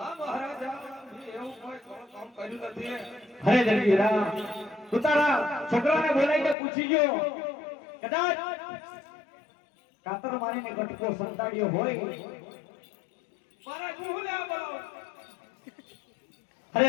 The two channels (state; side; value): drops out; right; at 6.6 s